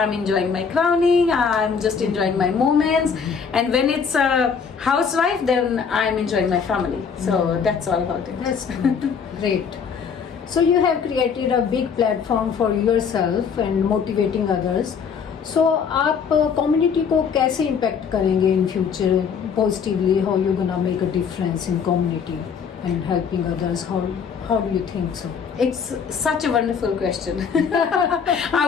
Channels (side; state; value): right; quieter; 6.4 dB